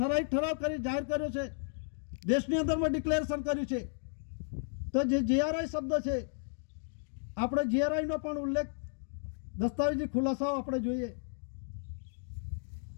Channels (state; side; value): silent; right; digital silence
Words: કરી જાહેર કર્યો છે. દેશની અંદરમાં ડિક્લેરેશન કર્યું છે. તો જે જીઆરઆઈ શબ્દ છે આપણે જીઆરઆઈનો પણ ઉલ્લેખ દસ્તાવેજી ખુલાસાઓ આપણે જોઈએ.